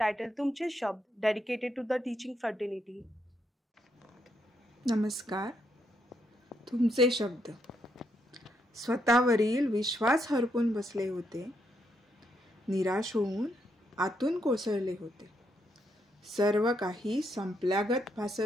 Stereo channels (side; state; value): both; normal; correlation 0.78